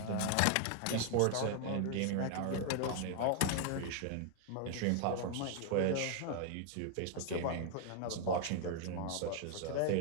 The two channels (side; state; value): both; different; correlation 0.00